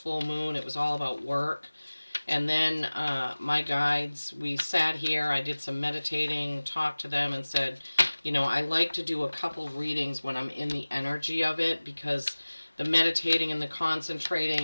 moon. It was all about work. And then my guides, we sat here, I did some meditating, talked to them and said, you know, I like to do a couple readings when I'm in the energy of it, because the meditating and the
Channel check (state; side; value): inverted; both; correlation -1.00